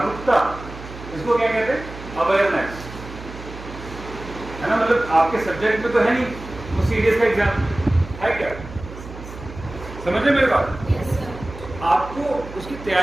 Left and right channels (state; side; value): noise; right; hum, 13 dB below the sound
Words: इसको क्या कहते हैं? अवेयरनेस, है ना? मतलब आपके सब्जेक्ट में तो है नहीं वो CDS का एग्जाम, है क्या? समझ रहे मेरे बात? Yes, sir. आपको उसकी